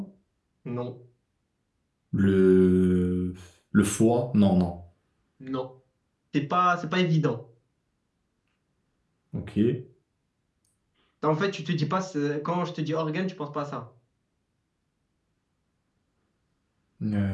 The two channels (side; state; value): both; identical; correlation 1.00